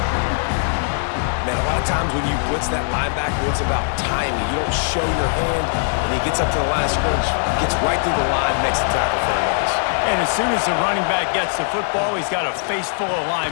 Man, a lot of times when you blitz that linebacker, it's about timing. You don't show your hand, and he gets up to the line of scrimmage, gets right through the line, makes the tackle for a loss. And as soon as the running back gets the football, he's got a face full of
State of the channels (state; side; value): silent; right; digital silence